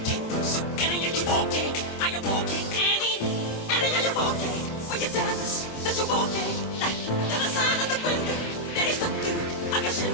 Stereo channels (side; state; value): right; late; 26 ms